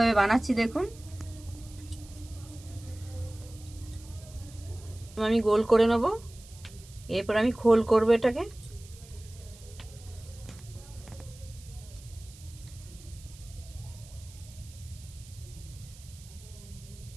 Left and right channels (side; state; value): right; noise; hiss, 21 dB below the sound